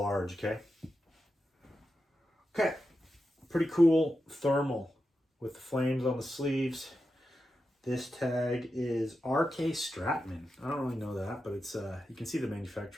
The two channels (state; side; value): normal; both; correlation 0.90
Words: okay? Okay, pretty cool thermal with the flames on the sleeves. This tag is RK Stratman. I don't really know that, but it's you can see the